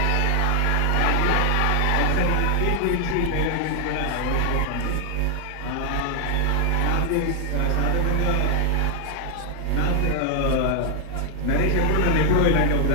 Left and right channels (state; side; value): different; both; correlation 0.00